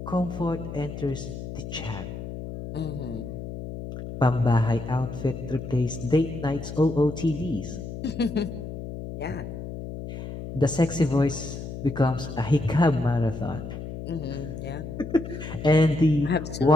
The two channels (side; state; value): left; noise; hum, 8 dB below the sound